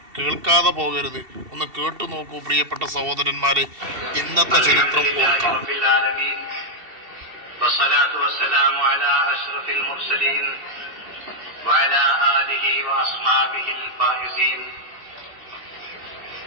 കേൾക്കാതെ പോകരുത്. ഒന്ന് കേട്ടു നോക്കൂ പ്രിയപ്പെട്ട സഹോദരന്മാരെ. ഇന്നത്തെ ചരിത്രം ഓർക്കാം.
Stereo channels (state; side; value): late; left; 2.7 ms